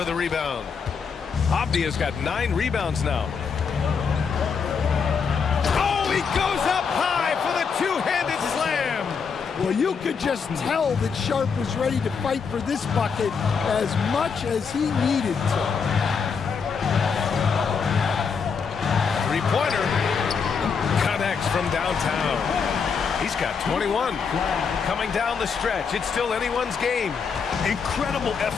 a rebound. Avdia's got 9 rebounds now. Oh, he goes up high for the two-handed slam. Well, you could just tell that Sharp was ready to fight for this bucket as much as he needed to. Three-pointer connects from downtown. He's got 21. Coming down the stretch, it's still anyone's game. Incredible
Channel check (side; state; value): right; quieter; 5.9 dB